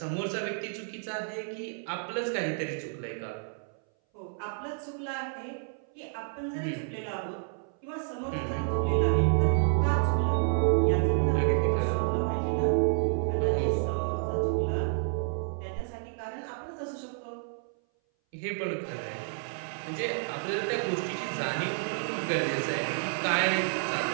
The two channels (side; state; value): left; silent; 58 dB below the other